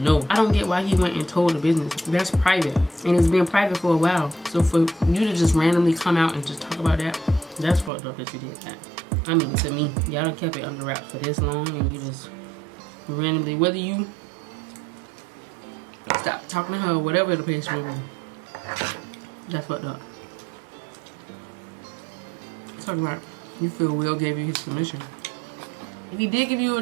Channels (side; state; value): left; drops out; at 7.9 s